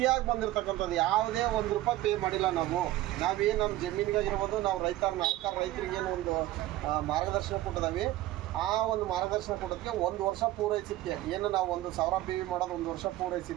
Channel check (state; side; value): quieter; left; 15.6 dB